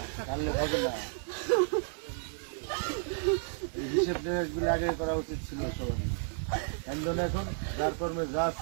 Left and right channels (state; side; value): silent; left; 56 dB below the other